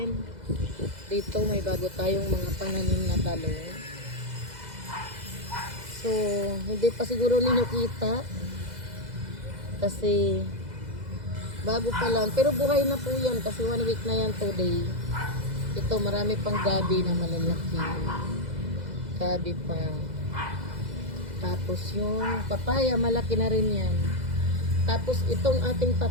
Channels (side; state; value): left; late; 2.0 ms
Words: dito may bago tayong mga pananim na talong. So, hindi pa siguro ninyo kita. Kasi, bago pa lang. Pero buhay na po yan. Kasi 1 week na yan today. Ito, marami pang gabi na malalaki. Gabi pa. Tapos yung papaya, malaki na rin yan. Tapos itong ating